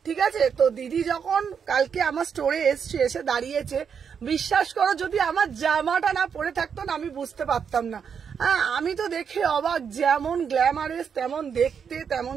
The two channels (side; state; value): left; quieter; 6.9 dB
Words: ঠিক আছে। তো দিদি যখন কালকে আমার স্টোরে এসে দাঁড়িয়েছে, বিশ্বাস করো যদি আমার জামাটা না পরে থাকতো না আমি বুঝতে পারতাম না। হ্যাঁ আমি তো দেখে অবাক, যেমন গ্ল্যামারেস তেমন দেখতে তেমন